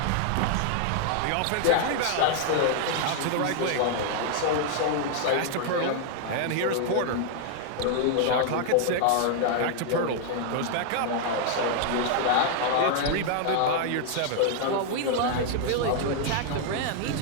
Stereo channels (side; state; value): both; different; correlation 0.00